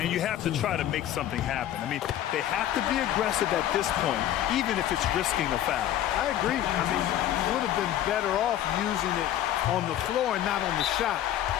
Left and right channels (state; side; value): quieter; right; 12.0 dB